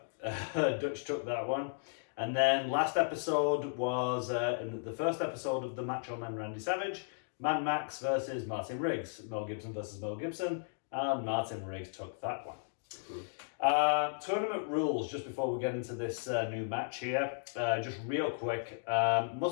Dutch took that one. And then last episode was in the first episode of the Macho Man Randy Savage, Man Max versus Martin Riggs, Mel Gibson versus Mel Gibson, and Martin Riggs took that one. Tournament rules, just before we get into this new match here, just real quick,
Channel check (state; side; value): silent; right; digital silence